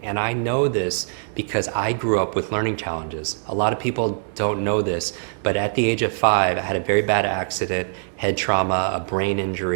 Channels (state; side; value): silent; left; digital silence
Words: And I know this because I grew up with learning challenges. A lot of people don't know this, but at the age of 5, I had a very bad accident, head trauma, a brain